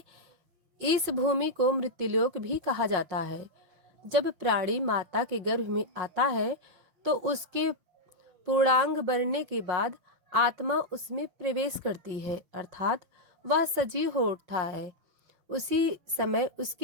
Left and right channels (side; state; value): left; late; 5.6 ms